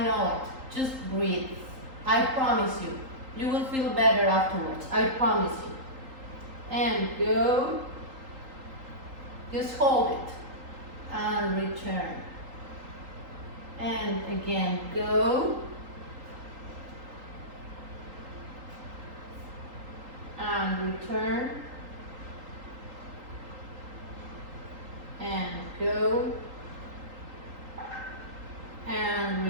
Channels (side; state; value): left; late; 3.8 ms